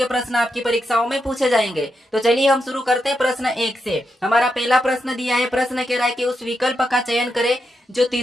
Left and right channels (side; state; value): both; normal; correlation 0.85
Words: प्रश्न आपकी परीक्षाओं में पूछे जाएंगे। तो चलिए हम शुरू करते हैं प्रश्न 1 से। हमारा पहला प्रश्न दिया है। प्रश्न कह रहा है कि उस विकल्प का चयन करें जो